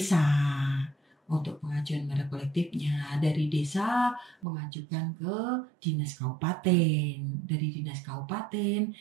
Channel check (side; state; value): left; drops out; at 4.5 s